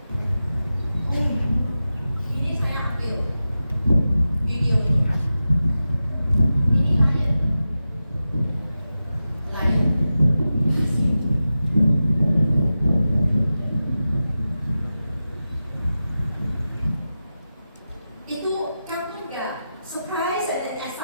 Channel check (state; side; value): inverted; both; correlation -0.93